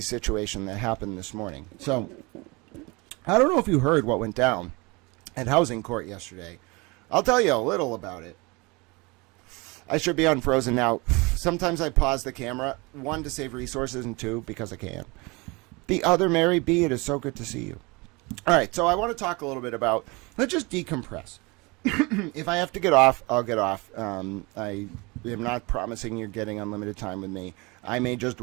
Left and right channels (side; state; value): left; quieter; 26.0 dB